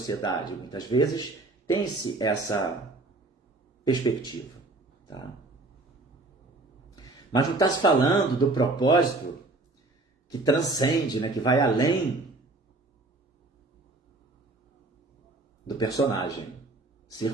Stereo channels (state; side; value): quieter; left; 3.1 dB